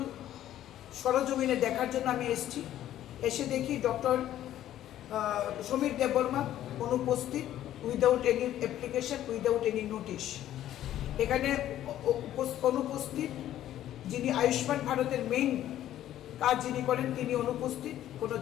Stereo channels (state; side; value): quieter; right; 12.4 dB